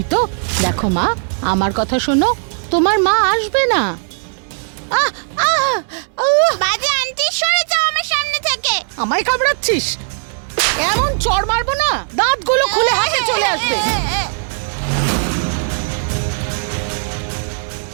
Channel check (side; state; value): left; silent; 68 dB below the other